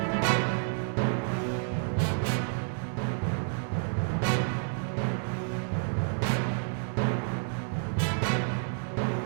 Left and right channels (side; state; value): left; silent; 58 dB below the other